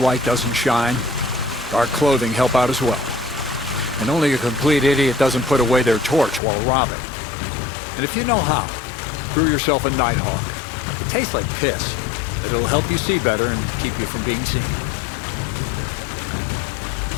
doesn't shine. Dark clothing help out as well. And only a complete idiot doesn't put away their torch while robbing. And if you know how, brew yourself a Nighthawk. It tastes like piss, but it'll help you see better and keep you from being seen.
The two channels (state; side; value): drops out; right; at 6.4 s